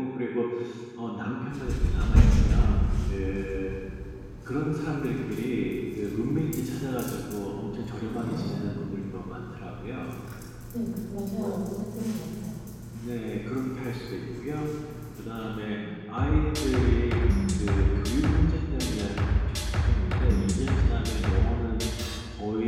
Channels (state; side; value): identical; both; correlation 1.00